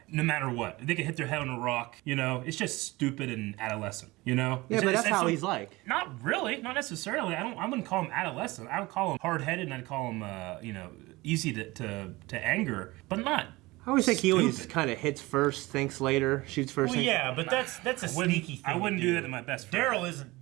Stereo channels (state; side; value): quieter; left; 21.1 dB